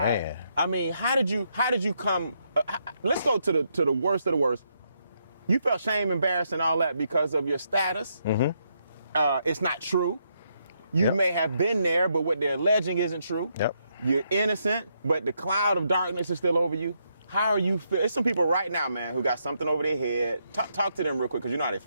Man. I mean, how did you come? Let's go to the worst of the worst. You felt shame, embarrassed, and all that because of your status. Mm-hmm. It's not true. You may have been there, but what they're alleging isn't true. Yep. You're innocent, but the cloud of darkness is still over you. How are you feel? There's some people right now, man, who got something over their head. Talk to them real quick, because you know how they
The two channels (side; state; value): both; inverted; correlation -0.78